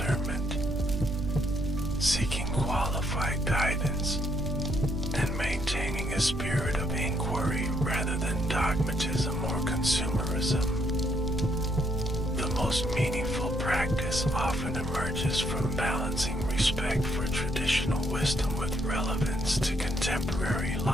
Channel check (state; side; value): normal; both; correlation 0.72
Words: seeking qualified guidance, and maintaining a spirit of inquiry rather than dogmatism or consumerism. The most meaningful practice often emerges from balancing respect for traditional wisdom with relevance to contemporary